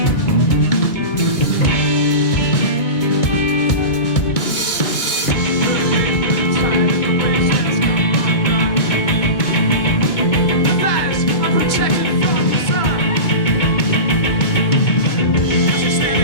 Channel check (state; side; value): late; right; 2.3 ms